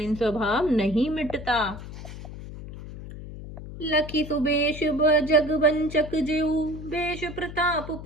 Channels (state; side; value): noise; left; hum, 12 dB below the sound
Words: स्वभाव नहीं मिटता। लखी सुबेश जग वंचक जेऊ, बेश प्रताप